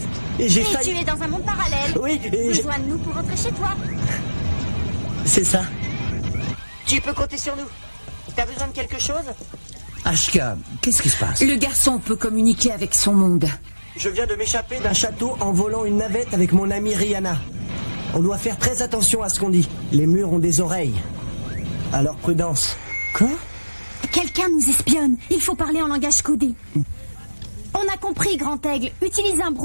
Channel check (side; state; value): both; inverted; correlation -1.00